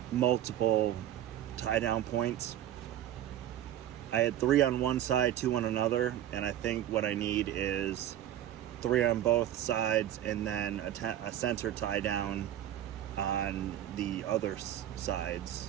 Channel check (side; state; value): left; quieter; 11.9 dB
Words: multiple tie down points. I had 3 on one side, 2 on another, and I think what I need is 3 on both sides and then a center tie down on the other